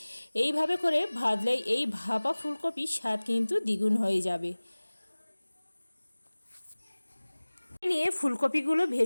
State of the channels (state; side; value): inverted; both; correlation -1.00